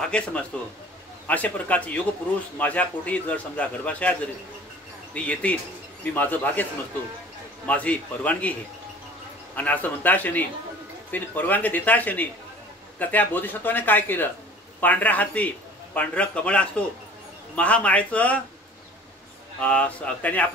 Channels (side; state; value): both; normal; correlation 0.46